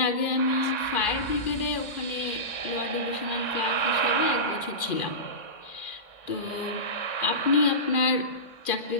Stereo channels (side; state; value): right; late; 2.5 ms